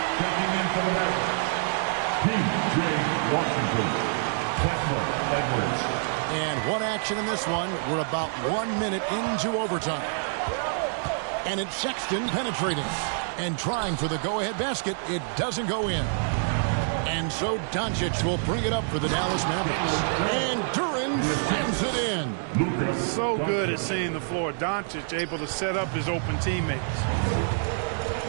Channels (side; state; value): left; silent; digital silence